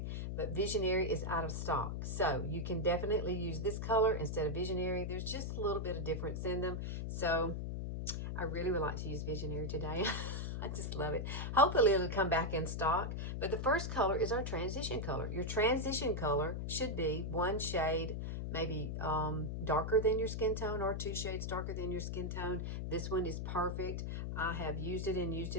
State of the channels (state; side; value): noise; left; hum, 3 dB below the sound